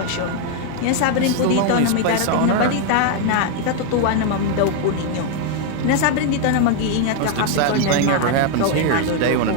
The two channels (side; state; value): both; different; correlation 0.01